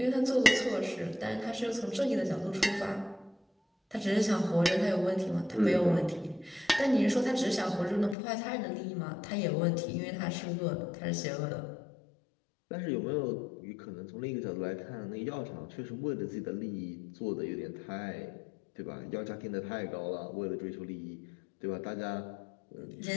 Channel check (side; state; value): right; drops out; at 8.2 s